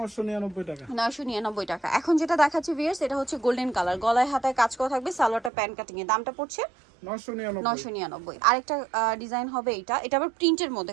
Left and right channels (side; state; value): left; drops out; at 5.5 s